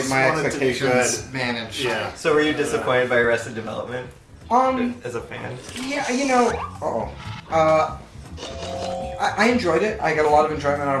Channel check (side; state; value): both; identical; correlation 1.00